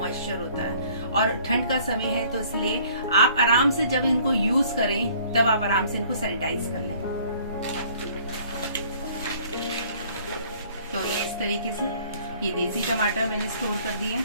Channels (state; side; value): inverted; both; correlation -0.56